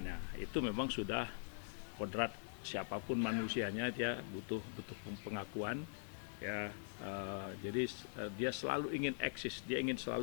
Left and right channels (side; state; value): right; silent; digital silence